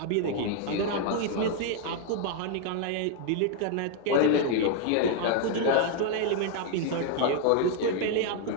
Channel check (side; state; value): both; different; correlation 0.00